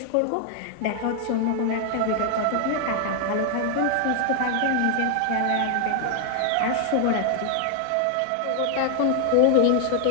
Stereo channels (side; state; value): both; different; correlation 0.00